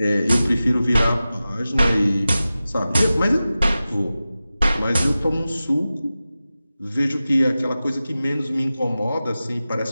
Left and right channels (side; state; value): both; inverted; correlation -0.95